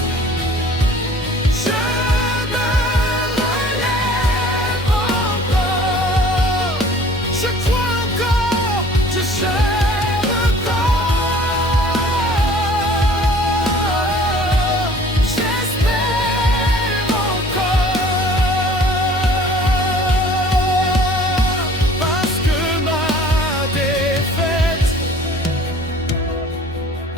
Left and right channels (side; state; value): both; normal; correlation 0.51